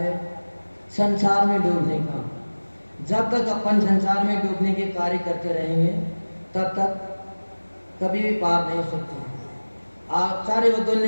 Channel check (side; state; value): both; inverted; correlation -1.00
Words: संसार में डूबने का। जब तक अपन संसार में डूबने के कार्य करते रहेंगे, तब तक कभी भी पार नहीं हो सकते। आचार्य भगवान